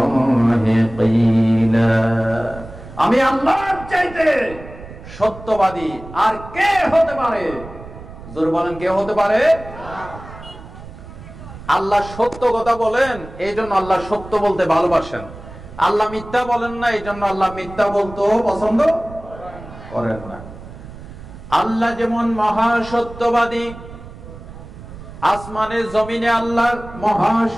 ক্বিলা, আমি আল্লাহর চাইতে সত্যবাদী আর কে হতে পারে? জোরে বলেন, কে হতে পারে? আল্লাহ সত্য কথা বলেন, এই জন্য আল্লাহ সত্য বলতে ভালোবাসেন। আল্লাহ মিথ্যা বলেন না, এই জন্য আল্লাহ মিথ্যা বলতেও পছন্দ করেন না। আল্লাহ যেমন মহা সত্যবাদী, আসমানে জমিনে আল্লাহ মহা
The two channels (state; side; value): noise; right; rumble, 15 dB below the sound